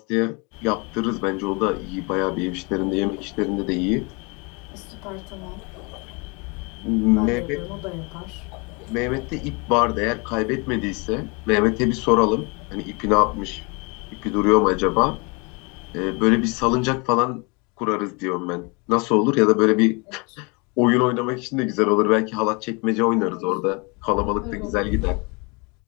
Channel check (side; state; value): right; quieter; 30.1 dB